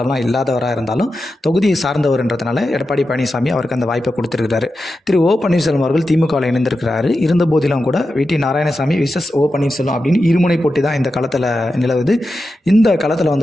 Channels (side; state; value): both; normal; correlation 0.90